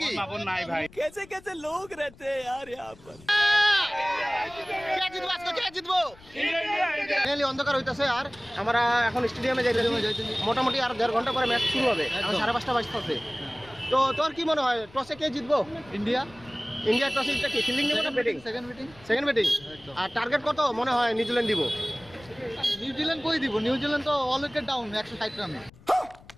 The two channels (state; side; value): noise; left; rumble, 23 dB below the sound